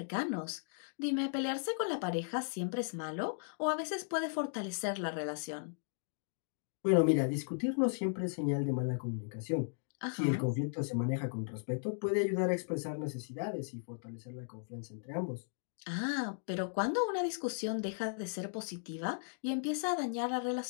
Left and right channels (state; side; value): silent; right; digital silence